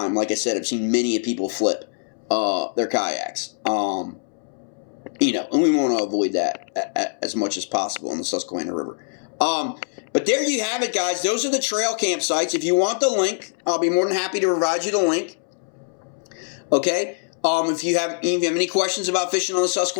like I said, I've seen many people flip their kayaks. You know, and we want to avoid that as much as possible in the Susquehanna River. But there you have it, guys. Those are the trail campsites. If you want the link, I'll be more than happy to provide you the link. Okay. If you have any questions about fishing on the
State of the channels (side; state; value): right; silent; 63 dB below the other